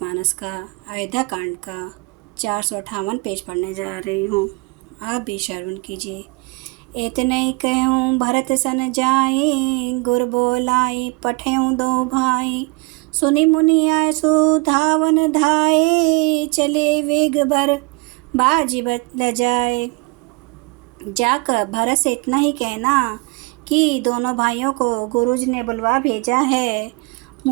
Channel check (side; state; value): left; quieter; 27.1 dB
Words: का अयोध्या कांड का 458 पेज पढ़ने जा रही हूँ। आप भी श्रवण कीजिए। इतने कहूँ भरत सन जाए, गुर बोलाई पठेऊँ दो भाई। सुनी मुनि आए सो धावन धाये, चले वेग भर बाजी बदल जाए। जाकर भरत से इतना ही कहना कि दोनों भाइयों को गुरुजी ने बुलवा भेजा है।